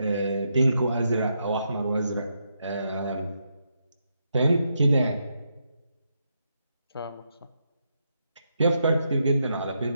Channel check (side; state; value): both; inverted; correlation -0.81